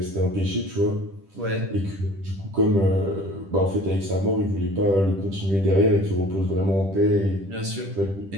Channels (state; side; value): late; left; 10 ms